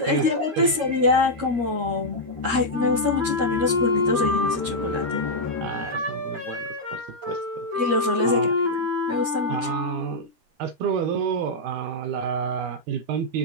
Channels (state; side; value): late; left; 13 ms